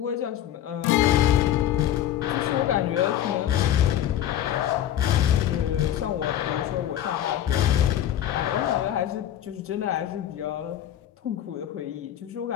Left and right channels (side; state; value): right; quieter; 11.3 dB